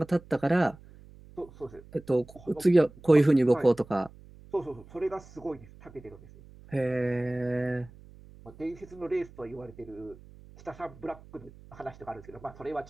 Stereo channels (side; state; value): right; noise; hum, 21 dB below the sound